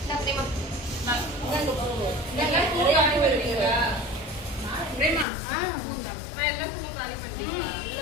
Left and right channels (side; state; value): right; drops out; at 5.2 s